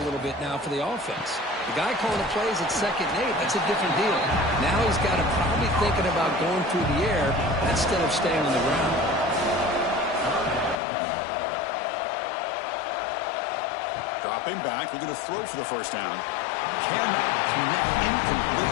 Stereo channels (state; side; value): drops out; right; at 10.8 s